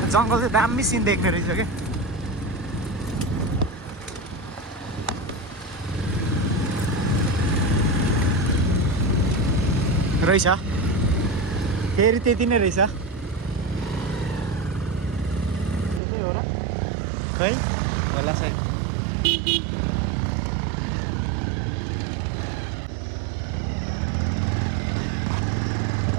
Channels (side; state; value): left; drops out; at 16.0 s